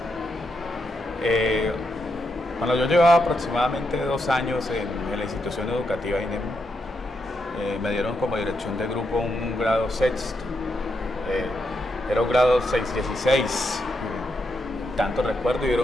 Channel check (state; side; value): normal; both; correlation 0.82